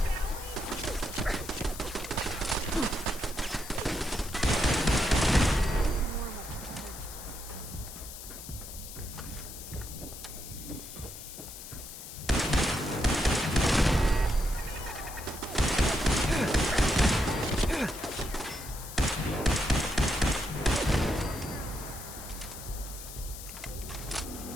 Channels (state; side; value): noise; left; hiss, 12 dB below the sound